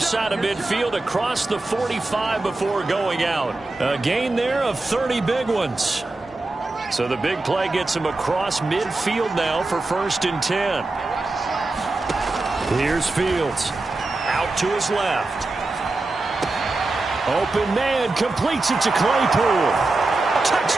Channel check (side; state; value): left; quieter; 3.1 dB